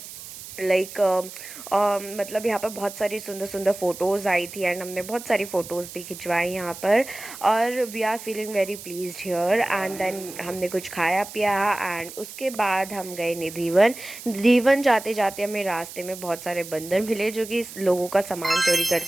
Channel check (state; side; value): noise; right; hiss, 13 dB below the sound